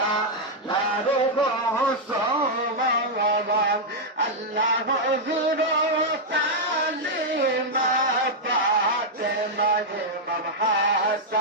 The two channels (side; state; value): both; normal; correlation -0.03